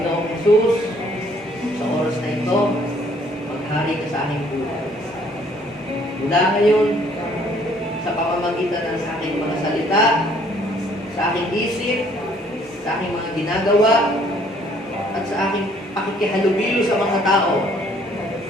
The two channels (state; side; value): normal; both; correlation 0.62